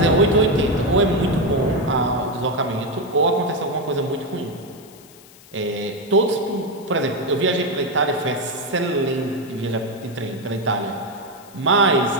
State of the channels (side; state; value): left; noise; hiss, 23 dB below the sound